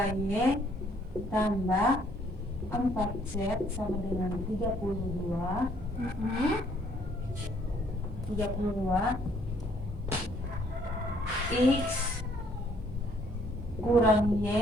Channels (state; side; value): normal; both; correlation 0.64